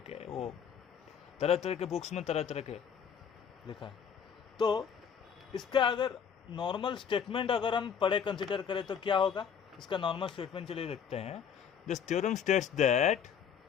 वो तरह तरह के बुक्स में तरह तरह के लिखा है। तो इसका अगर नॉर्मल स्टेटमेंट अगर हम पढ़े कंसिडर करें तो क्या होगा, इसका नॉर्मल स्टेटमेंट चलिए देखते हैं। This theorem states that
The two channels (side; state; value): right; quieter; 7.5 dB